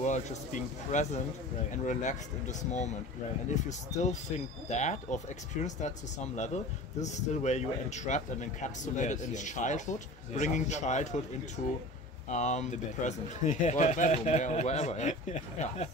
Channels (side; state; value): both; normal; correlation 0.38